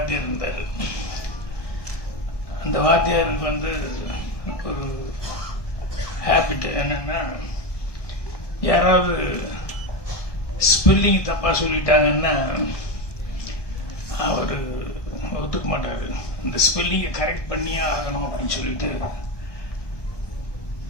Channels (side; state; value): right; late; 1.2 ms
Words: இருந்தார். அந்த வாத்தியாருக்கு வந்து ஒரு ஹேபிட் என்னன்னா, யாராவது ஸ்பெல்லிங் தப்பாக சொல்லிட்டாங்கன்னா அவர் ஒத்துக்க மாட்டார். இந்த ஸ்பெல்லிங்கை கரெக்ட் பண்ணியே ஆகணும் அப்படின்னு சொல்லிட்டு